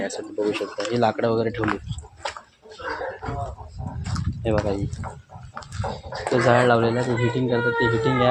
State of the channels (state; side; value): identical; both; correlation 1.00